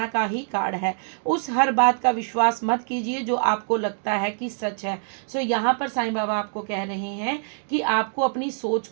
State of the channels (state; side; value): silent; left; digital silence